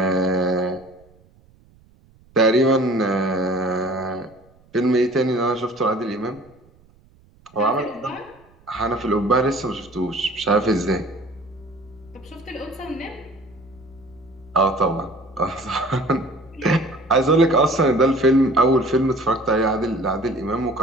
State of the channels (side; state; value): right; noise; rumble, 29 dB below the sound